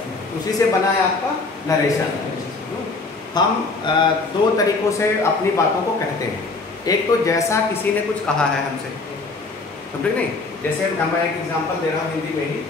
उसी से बना है आपका नरेशन। हम दो तरीकों से अपनी बातों को कहते हैं। एक तो जैसा किसी ने कुछ कहा है हमसे, समझे नहीं? जैसे मैं एक एग्जांपल दे रहा हूँ हिंदी में ही।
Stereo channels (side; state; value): right; quieter; 3.7 dB